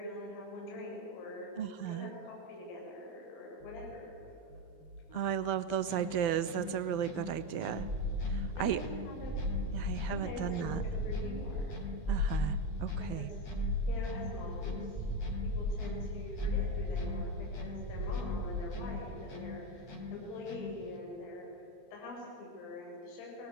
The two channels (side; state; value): right; late; 12 ms